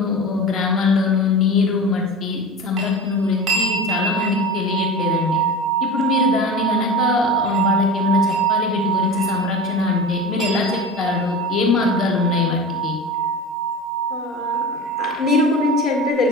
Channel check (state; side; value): normal; both; correlation 0.32